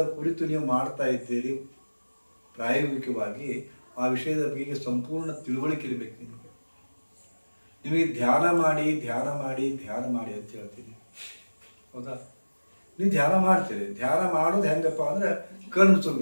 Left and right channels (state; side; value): inverted; both; correlation -1.00